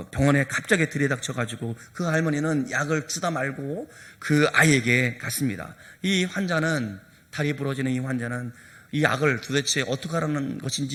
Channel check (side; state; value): both; identical; correlation 1.00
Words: 병원에 갑자기 들이닥쳐가지고 그 할머니는 약을 주다 말고 그 아이에게 갔습니다. 이 환자는, 다리 부러지는 이 환자는 이 약을 도대체 어떻게 하라는